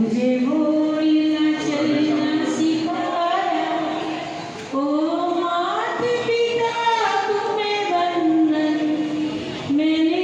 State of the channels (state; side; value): identical; both; correlation 1.00